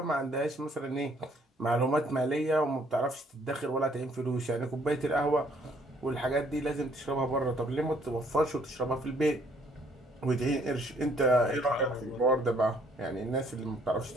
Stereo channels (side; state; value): both; normal; correlation 0.64